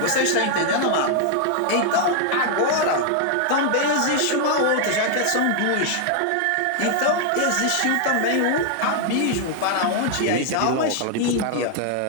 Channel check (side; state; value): both; different; correlation 0.00